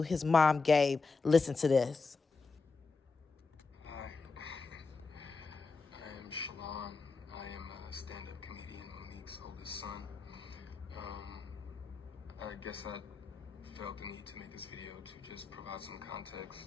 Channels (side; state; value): right; quieter; 4.4 dB